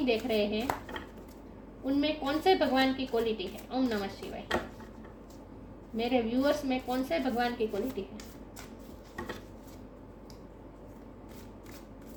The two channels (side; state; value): both; identical; correlation 1.00